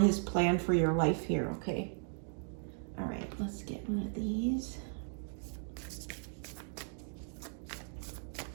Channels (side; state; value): left; silent; 53 dB below the other